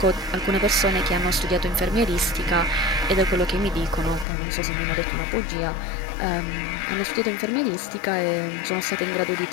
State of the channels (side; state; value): right; drops out; at 4.2 s